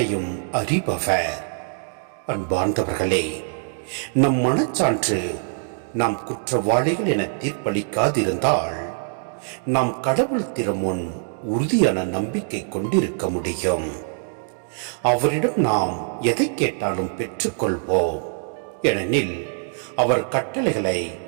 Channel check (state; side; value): silent; left; 63 dB below the other